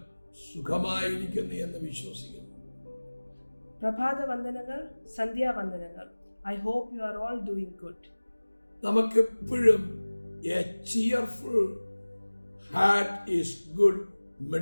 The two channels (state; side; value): inverted; both; correlation -1.00